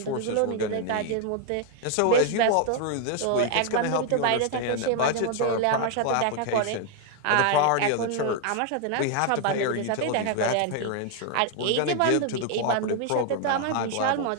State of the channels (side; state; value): both; different; correlation 0.00